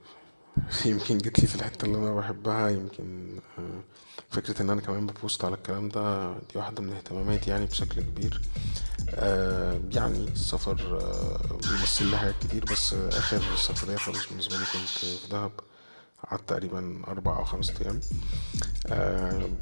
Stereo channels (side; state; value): both; inverted; correlation -1.00